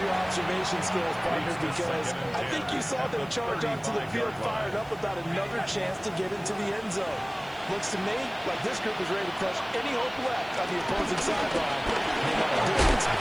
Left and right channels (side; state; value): right; noise; hiss, 27 dB below the sound